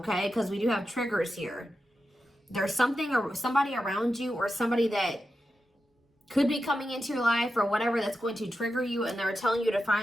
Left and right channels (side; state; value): both; normal; correlation 0.90